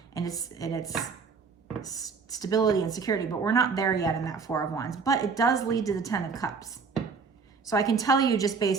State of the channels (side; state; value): left; quieter; 5.2 dB